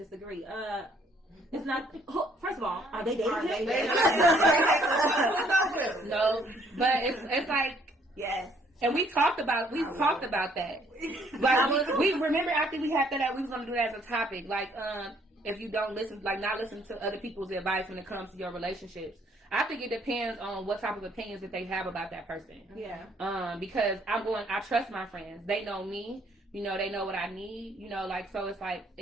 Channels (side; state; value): both; normal; correlation 0.65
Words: It's not. First of all, are they dating him? No, but it's like yes. And we talked about that. But we remember after we had that we was gonna do that as a topic. Like, if you don't listen, like not listen to other people's advice when it comes to your relationships. I think it depends on what type of opinions that they have about that person. Yeah. Because I trust my friends. They know me. You know, they know what I need. You know, like, so it's like